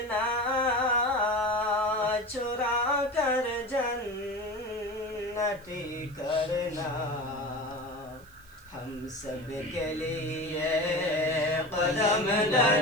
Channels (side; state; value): right; noise; hiss, 26 dB below the sound